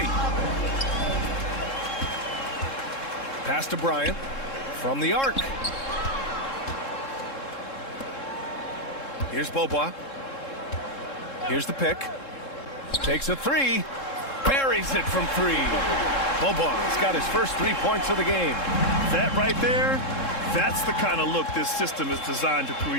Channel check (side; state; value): right; late; 3.7 ms